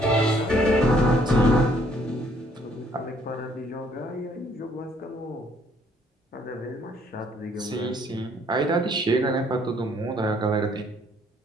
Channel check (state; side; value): normal; both; correlation 0.64